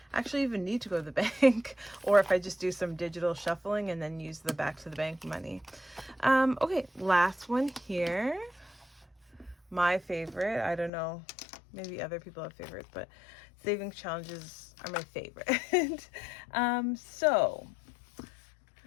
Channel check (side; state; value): right; drops out; at 10.9 s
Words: actually even need to go to the bank or if I just do some digital shuffling and then use the back to the bank money. Okay, last one here. My favorite, I don't know, maybe other people have favorites, but savings challenges are my favorite. So